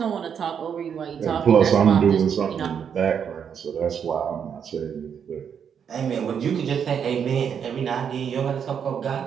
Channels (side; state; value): left; quieter; 7.6 dB